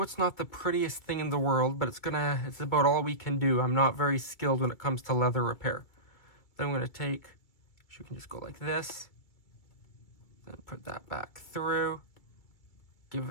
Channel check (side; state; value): right; late; 2.3 ms